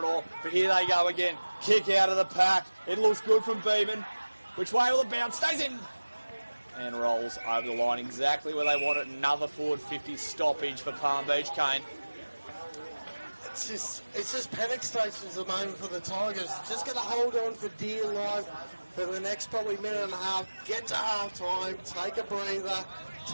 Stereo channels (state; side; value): inverted; both; correlation -1.00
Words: but here they go again. Kick out of the pack. It looks good from Beeman. Which way will it bounce? Stays in. And rolls over the line exactly where they want it. Another forward 50 stoppage for Palm Beach, Kane. It's just panic stations at the moment for the Tigers. Just going to hold on for dear life. for the next probably minute and a half. Get to half time, take a breather,